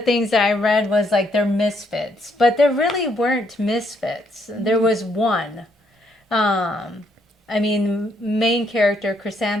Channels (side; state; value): both; normal; correlation 0.72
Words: that I read was like they're misfits, but there really weren't misfits. There was one. I mean, main character,